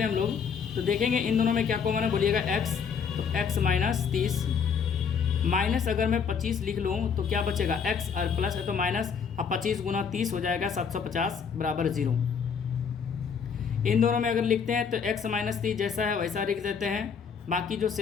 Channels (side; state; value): right; quieter; 6.5 dB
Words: हैं हम लोग तो देखेंगे इन दोनों में क्या कॉमन है, बोलिएगा x, तो x माइनस 30 माइनस अगर मैं 25 लिख लूँ तो क्या बचेगा x, और प्लस है तो माइनस, अब 25 गुना 30 हो जाएगा 750 बराबर 0। इन दोनों में अगर लिखते हैं तो x माइनस 30 जैसा है वैसा लिख देते हैं, बाकी जो